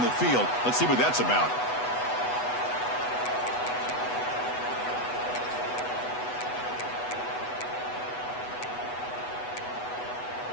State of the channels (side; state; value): right; late; 8.1 ms